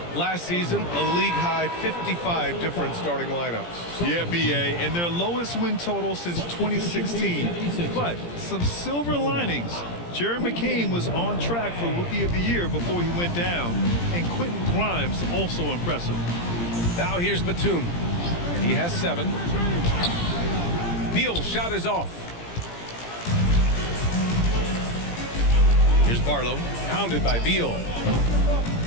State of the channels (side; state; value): right; late; 17 ms